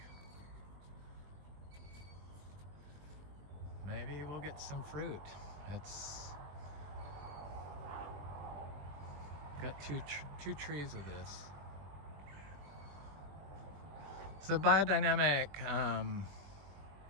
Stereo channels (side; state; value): left; late; 20 ms